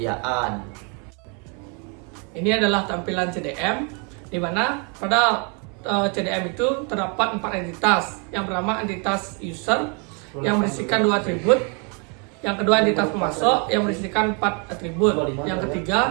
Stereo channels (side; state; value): left; quieter; 35.7 dB